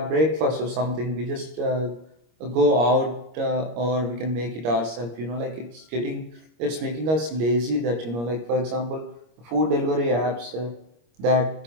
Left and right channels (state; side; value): late; left; 25 ms